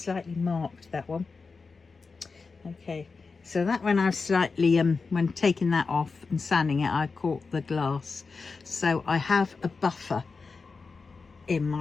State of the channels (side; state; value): right; quieter; 4.5 dB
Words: marked that one. Okay, so that one I've slightly when taking that off and sanding it, I caught the glass. So I have a buffer in